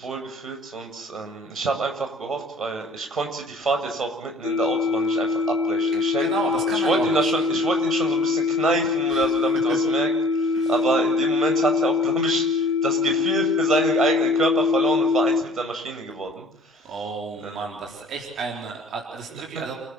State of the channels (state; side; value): normal; both; correlation 0.51